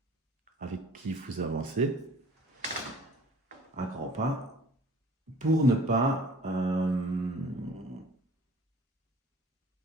avec qui vous avancez à grands pas pour ne pas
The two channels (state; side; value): normal; both; correlation 0.49